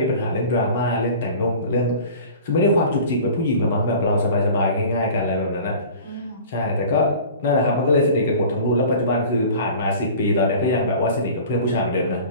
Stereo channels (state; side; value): inverted; both; correlation -0.42